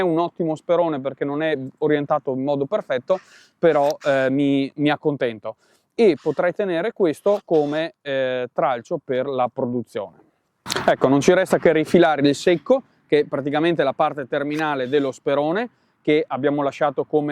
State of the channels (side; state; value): both; identical; correlation 1.00